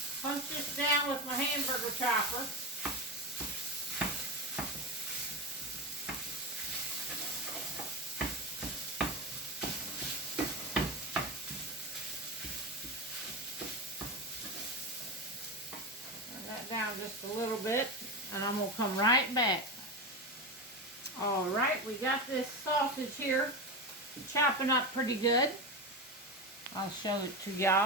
Punch this down with my hamburger chopper. Down just a little bit, and I'm going to come right back. Alright, we got this sausage here chopping up pretty good. I'll show it to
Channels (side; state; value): both; normal; correlation 0.18